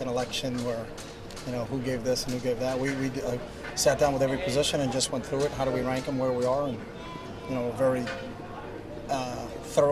an election where, who gave this and who gave that. We sat down with every position and just went through it. How do we rank them, where we are, and we're very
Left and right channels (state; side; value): identical; both; correlation 1.00